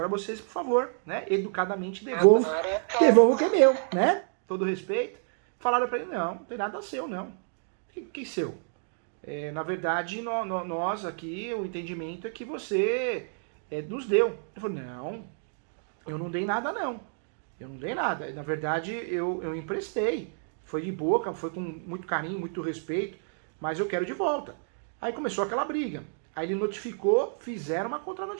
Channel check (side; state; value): left; silent; digital silence